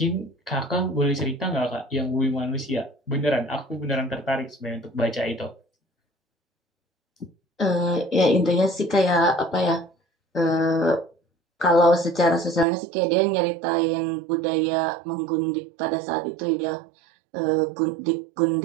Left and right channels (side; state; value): left; drops out; at 12.7 s